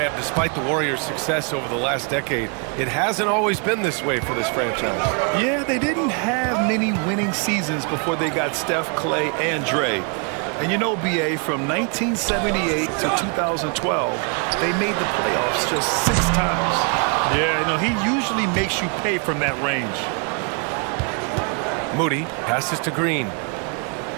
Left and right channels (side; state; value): left; quieter; 37.6 dB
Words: despite the Warriors' success over the last decade, it hasn't always been this way for this franchise. Yeah, they didn't have many winning seasons before they got Steph, Clay, and Dre. And you know, B.A., from 1978 to 2012, they made the playoffs just 6 times. Yeah, you know, he usually makes you pay from that range. Moody passes to Green.